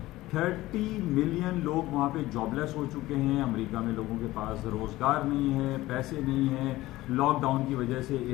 ملین لوگ وہاں پہ جاب لیس ہو چکے ہیں. امریکہ میں لوگوں کے پاس روزگار نہیں ہے، پیسے نہیں ہیں، لاک ڈاؤن کی وجہ سے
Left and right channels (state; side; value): quieter; right; 17.4 dB